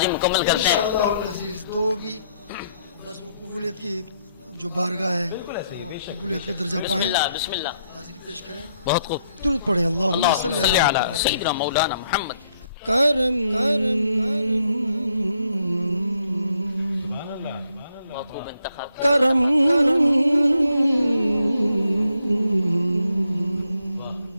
مکمل کرتے ہیں. دو بھی بس وہ قبولیت کی جو بارگاہ ہے قبولیت کا درجہ بسم پائیں، اللہ بسم اللہ. حاضری پیش کریں. بہت خوب. درود پڑھیں. اللہم اللہم صلی صلی علی سیدنا مولانا محمد. کرم بہت خوب انتخاب. کرم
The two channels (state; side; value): inverted; both; correlation -0.74